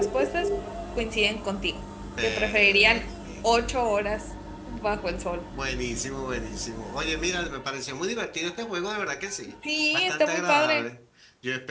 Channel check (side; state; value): both; identical; correlation 1.00